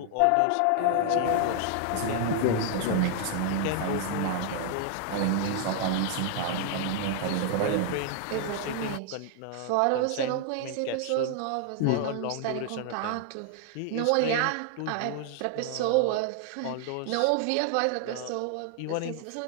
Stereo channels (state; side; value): different; both; correlation 0.00